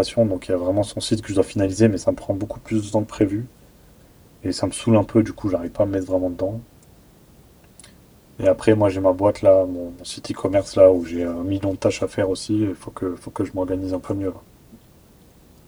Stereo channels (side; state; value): both; identical; correlation 1.00